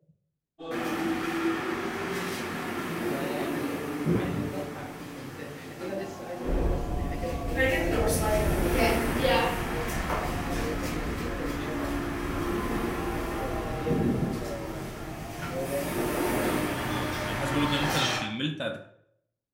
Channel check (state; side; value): identical; both; correlation 1.00